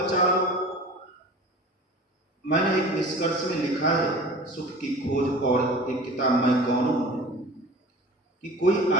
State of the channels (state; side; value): normal; both; correlation 0.39